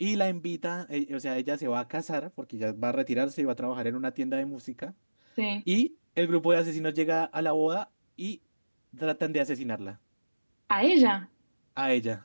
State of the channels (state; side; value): inverted; both; correlation -1.00